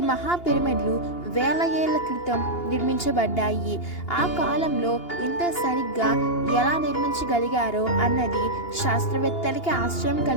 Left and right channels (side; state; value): right; late; 2.8 ms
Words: మహా పిరమిడ్లు వేల ఏళ్ల క్రితం నిర్మించబడ్డాయి. ఆ కాలంలో ఇంత సరిగ్గా ఎలా నిర్మించగలిగారో అన్నది శాస్త్రవేత్తలకి ఆశ్చర్యం